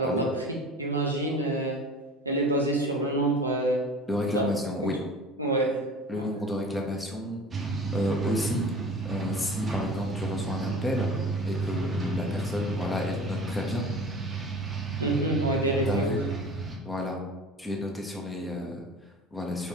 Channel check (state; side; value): normal; both; correlation 0.39